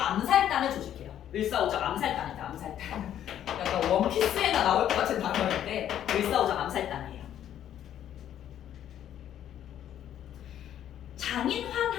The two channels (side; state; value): right; quieter; 10.7 dB